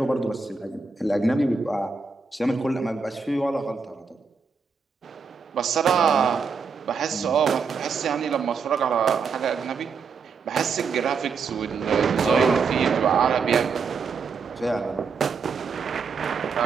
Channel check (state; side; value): quieter; left; 5.2 dB